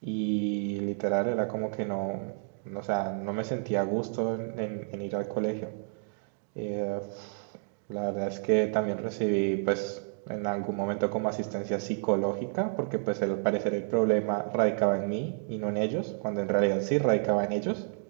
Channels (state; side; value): silent; left; digital silence